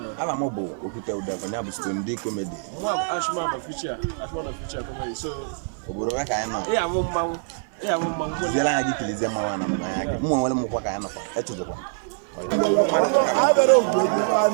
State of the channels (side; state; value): left; silent; 58 dB below the other